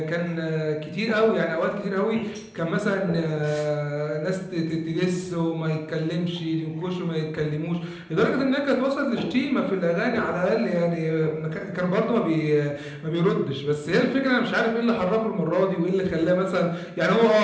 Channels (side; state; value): both; identical; correlation 1.00